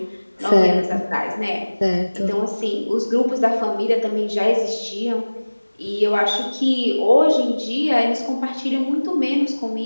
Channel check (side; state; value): both; inverted; correlation -1.00